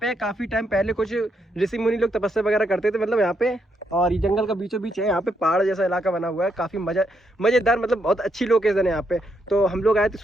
काफी टाइम पहले कुछ ऋषि मुनि लोग तपस्या वगैरह करते थे, मतलब यहाँ पे। और ये जंगल का बीचों बीच है, यहाँ पे पहाड़ जैसा इलाका बना हुआ है, काफी मजेदार, मतलब बहुत अच्छी लोकेशन है यहाँ पे। तो हम लोग आए थे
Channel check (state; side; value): normal; both; correlation 0.77